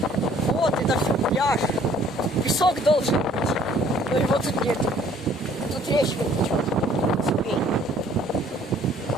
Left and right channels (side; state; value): both; normal; correlation 0.58